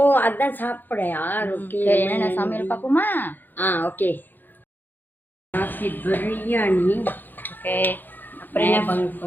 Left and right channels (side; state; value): right; late; 0.089 ms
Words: அதான் சாப்பிடையா? ஓகே, சரி, என்னென்ன சமையல் பார்ப்போமா? ஓகே. நாசி பிரியாணி. ஓகே, அப்புறம் என்ன